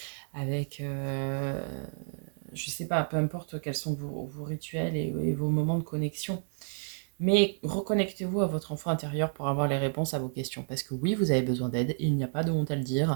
avec, je sais pas, peu importe quels sont vos rituels et vos moments de connexion. Mais reconnectez-vous à votre enfant intérieur pour avoir les réponses à vos questions. Parce que oui, vous avez besoin d'aide, il n'y a pas de honte à le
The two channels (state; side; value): silent; left; digital silence